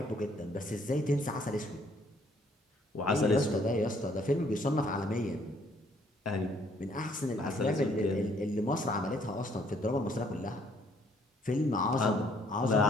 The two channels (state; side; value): normal; both; correlation 0.65